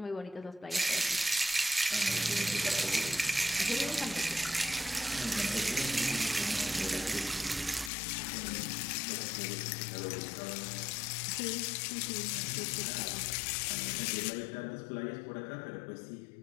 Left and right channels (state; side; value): drops out; right; at 7.9 s